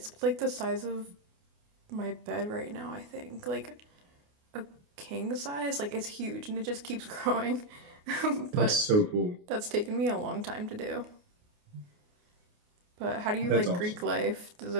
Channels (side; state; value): left; late; 28 ms